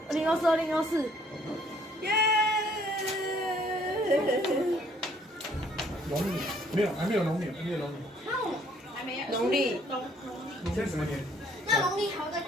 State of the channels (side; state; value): both; normal; correlation 0.63